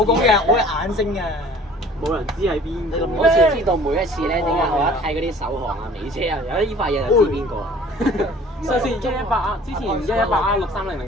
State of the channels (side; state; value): both; normal; correlation 0.50